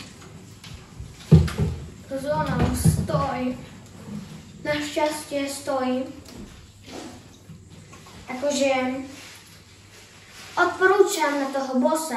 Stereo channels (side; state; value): both; identical; correlation 1.00